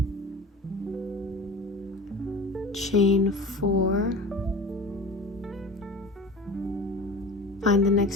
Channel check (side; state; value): both; normal; correlation 0.37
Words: Chain 4. Find the